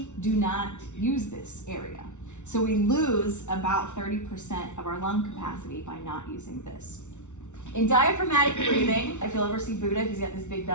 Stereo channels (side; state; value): right; late; 0.84 ms